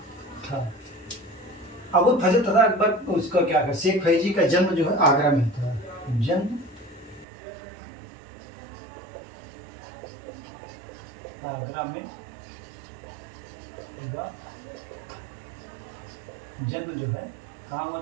था। अबुल फजल तथा अकबर उसका क्या कर, शेख फैजी का जन्म जो है आगरा में था। जन्म आगरा में हुआ, जन्म जो है कहाँ हुआ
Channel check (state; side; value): drops out; left; at 7.2 s